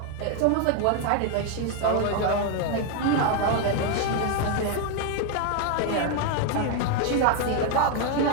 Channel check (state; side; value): different; both; correlation 0.01